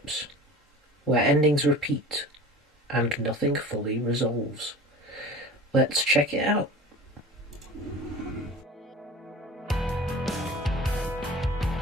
where endings repeat and nothing fully resolves. Let's check it out.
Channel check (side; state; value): both; normal; correlation 0.39